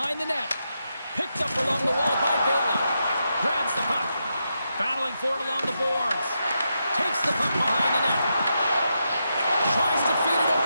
the net. Picked up along the wall by Bailey. Grabs the puck. Battling for it along the boards. Takes the puck behind the net. Tries to feed it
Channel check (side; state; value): both; inverted; correlation -0.85